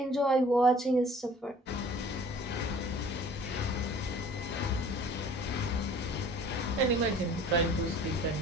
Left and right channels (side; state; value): both; normal; correlation 0.49